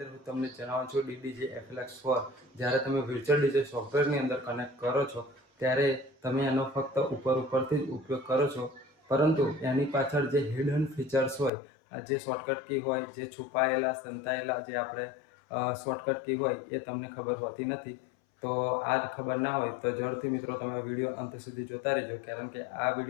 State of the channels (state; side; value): drops out; right; at 11.5 s